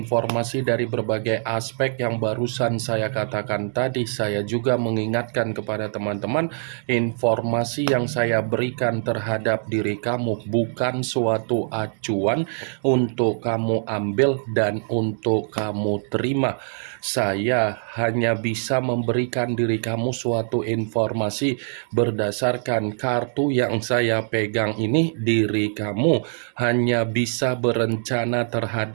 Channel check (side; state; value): left; silent; digital silence